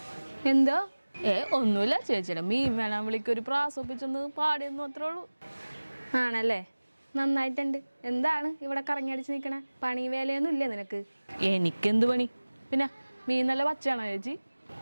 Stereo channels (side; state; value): both; inverted; correlation -1.00